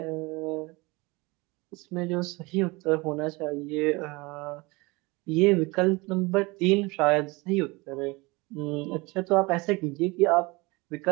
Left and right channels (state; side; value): quieter; left; 24.5 dB